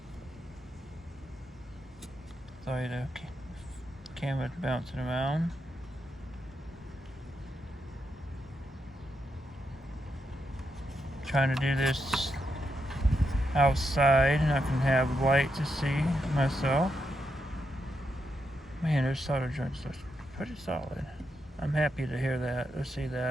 Sorry, the camera's bouncing around. Trying to do this outside and I can have light to see myself. Man, those solder joints look pretty solid. I'm happy to hear that, or see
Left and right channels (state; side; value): normal; both; correlation 0.83